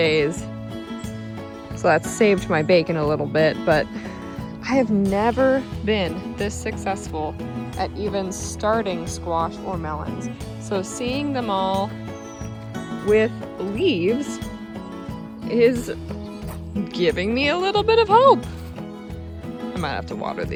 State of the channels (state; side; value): identical; both; correlation 1.00